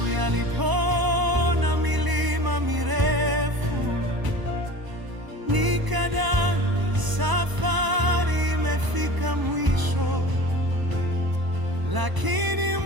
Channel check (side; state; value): left; late; 1.0 ms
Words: yalipona milima mirefu, nikadhani safari imefika mwisho, lakini